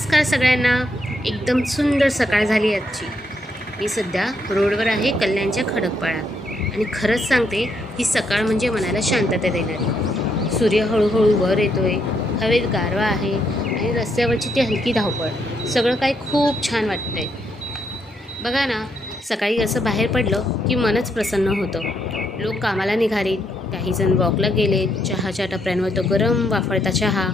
सगळ्यांना. एकदम सुंदर सकाळ झाली आजची. मी सध्या रोडवर आहे कल्याणच्या खडकपाळा आणि खरंच सांगते ही सकाळ म्हणजे मनाला शांतता देणारी. सूर्य हळूहळू वर येतोय, हवेत गारवा आहे आणि रस्त्यावरची ती हलकी धावपळ, सगळं काही खूप छान वाटतंय. बघा ना, सकाळी असं बाहेर पडलं की मनच प्रसन्न होतं. लोक कामाला निघाले, काहीजण वॉकला गेले, चहाच्या टपऱ्यांवर तो गरम वाफळता चहा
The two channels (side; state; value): both; normal; correlation 0.76